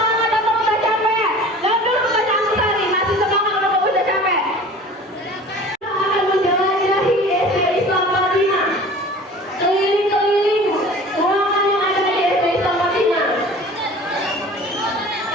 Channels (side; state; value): both; normal; correlation 0.43